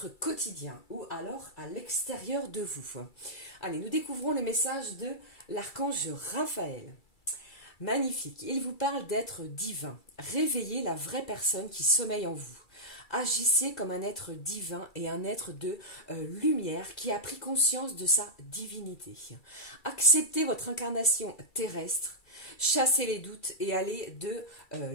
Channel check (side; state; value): right; late; 2.3 ms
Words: quotidien ou alors à l'extérieur de vous. Allez, nous découvrons les messages de l'archange Raphaël. Magnifique, il vous parle d'être divin. Réveillez la vraie personne qui sommeille en vous. Agissez comme un être divin et un être de lumière qui a pris conscience de sa divinité. Acceptez votre incarnation terrestre. Chassez les doutes et allez de